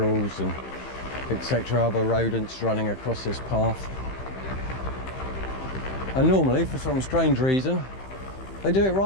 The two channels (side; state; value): right; late; 15 ms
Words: and etc., other rodents running across this path. And normally, for some strange reason, they do it